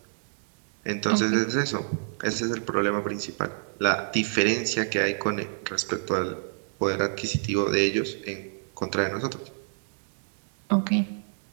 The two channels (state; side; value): silent; left; 59 dB below the other